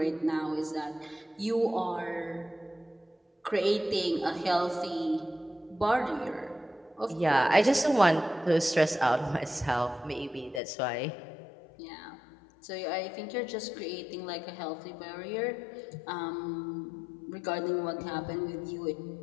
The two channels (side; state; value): right; drops out; at 10.6 s